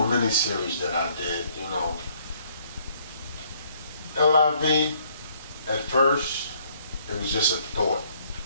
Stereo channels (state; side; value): inverted; both; correlation -0.65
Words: mini-series that I did, you know. L.I.V, at first, it was just a thought.